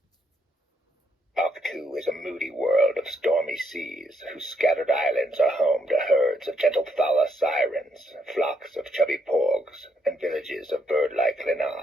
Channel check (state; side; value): normal; both; correlation 0.75